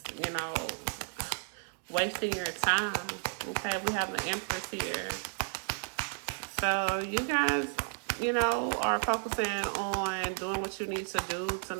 you know, wasting your time. Okay, we have an Empress here. So you guys, you know, are focusing on doing what you need to do to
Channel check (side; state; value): left; silent; 56 dB below the other